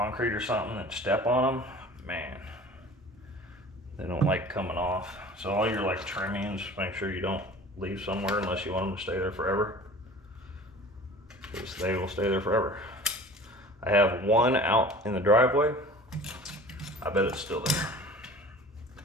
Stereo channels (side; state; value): both; normal; correlation 0.43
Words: or something and step on them, man, they don't like coming off. So all your like trimmings, make sure you don't leave somewhere unless you want them to stay there forever, because they will stay there forever. I have one out in the driveway. I bet it's still there.